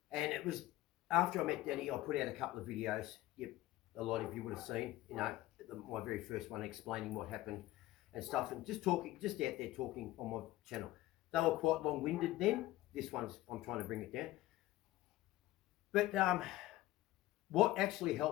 And it was after I met Denny, I put out a couple of videos. A lot of you would have seen, my very first one explaining what happened and stuff, and just out there talking on my channel. They were quite long-winded then. This one's, I'm trying to bring it down. But what actually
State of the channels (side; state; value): right; quieter; 16.7 dB